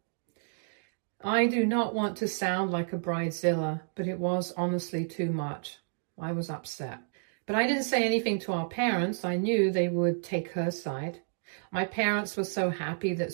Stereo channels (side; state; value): left; silent; digital silence